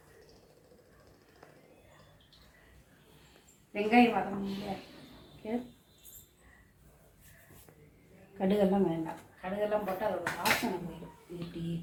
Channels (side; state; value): both; identical; correlation 1.00